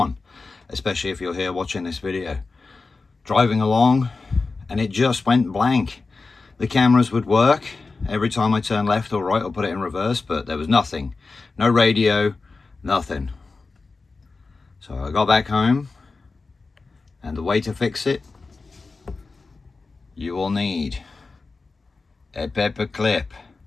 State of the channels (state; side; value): quieter; right; 4.0 dB